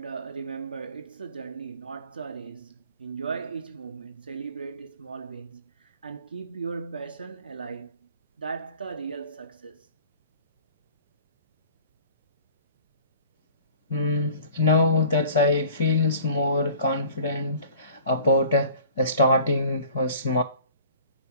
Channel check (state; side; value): inverted; both; correlation -0.47